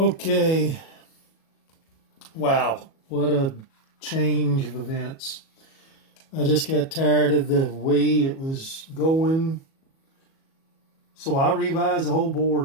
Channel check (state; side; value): late; right; 37 ms